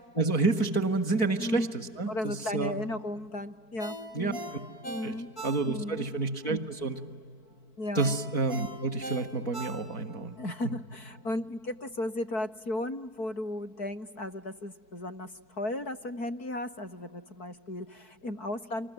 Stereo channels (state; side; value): late; right; 4.5 ms